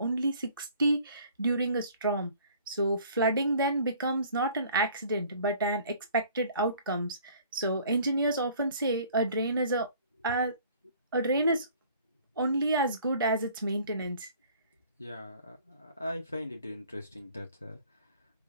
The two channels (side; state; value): both; inverted; correlation -0.53